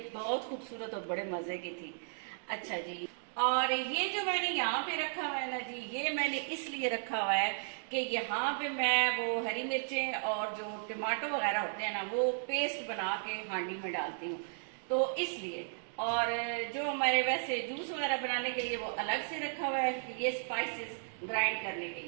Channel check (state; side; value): silent; left; digital silence